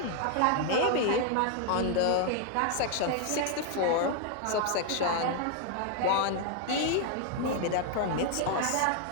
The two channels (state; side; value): different; both; correlation 0.00